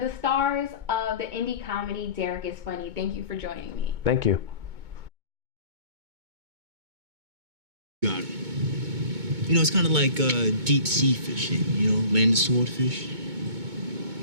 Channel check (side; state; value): left; late; 2.2 ms